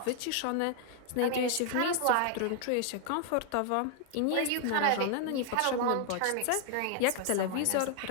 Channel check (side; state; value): both; different; correlation 0.00